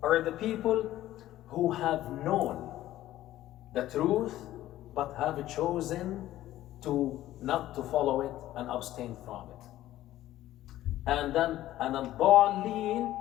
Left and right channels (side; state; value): right; quieter; 14.3 dB